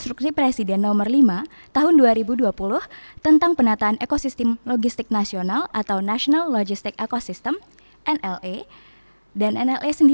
Presiden Nomor 5 Tahun 2020 tentang penataan ekosistem logistik nasional atau National Logistic Ecosystem (NLE). Dan NLE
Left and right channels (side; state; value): both; inverted; correlation -1.00